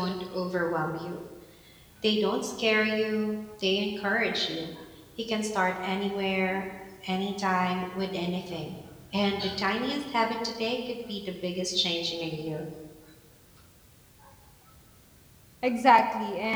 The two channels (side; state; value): both; identical; correlation 1.00